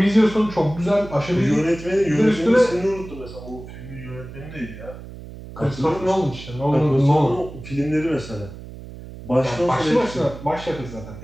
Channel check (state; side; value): noise; right; hum, 14 dB below the sound